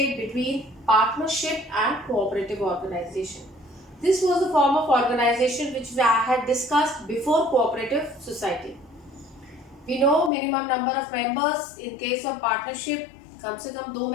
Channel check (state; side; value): drops out; right; at 10.3 s